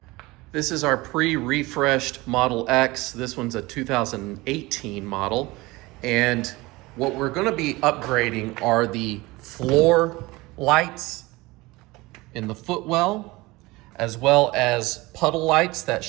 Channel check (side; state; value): left; quieter; 21.5 dB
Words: This is our pre-refreshed Model X. This one's a 2018 model. And what we're going to be upgrading are the floor lights in the footwell, as well as puddle lights that